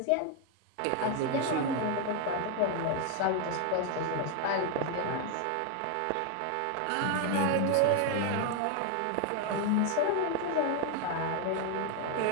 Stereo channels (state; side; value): different; both; correlation 0.01